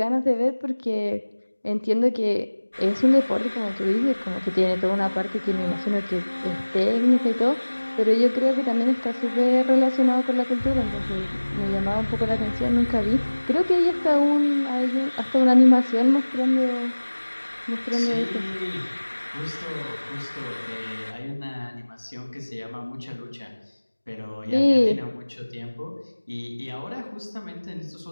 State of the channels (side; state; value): both; inverted; correlation -1.00